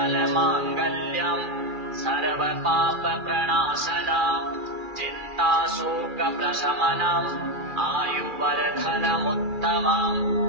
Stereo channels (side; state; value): left; late; 2.3 ms